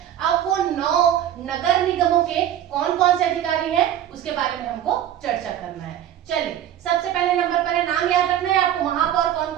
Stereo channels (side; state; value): left; quieter; 11.1 dB